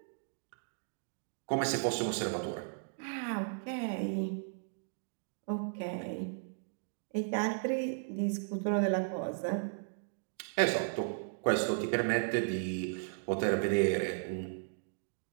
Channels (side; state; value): left; silent; digital silence